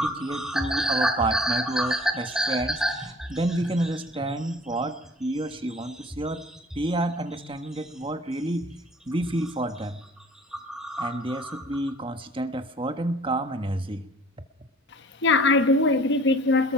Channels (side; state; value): both; normal; correlation 0.50